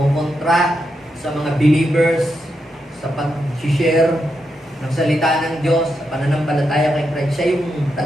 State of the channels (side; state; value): both; normal; correlation 0.84